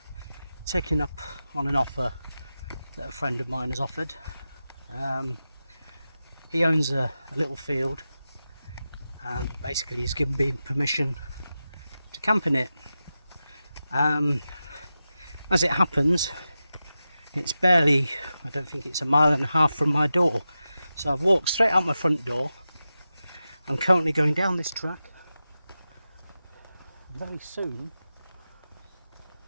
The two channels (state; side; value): inverted; both; correlation -0.92